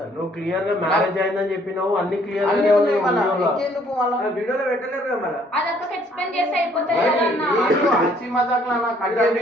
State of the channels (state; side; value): normal; both; correlation 0.62